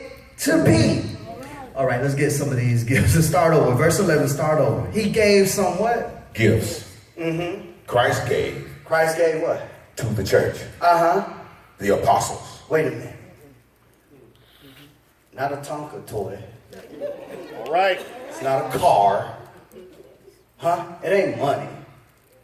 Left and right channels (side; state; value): both; identical; correlation 1.00